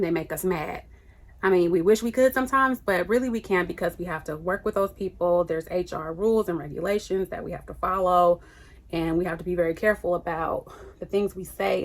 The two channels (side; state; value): both; identical; correlation 1.00